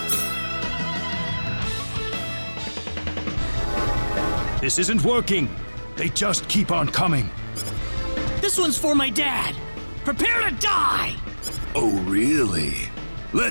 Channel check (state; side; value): inverted; both; correlation -1.00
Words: This isn't working. They just keep on coming. This one's for my dad. Prepare to die! Oh, really?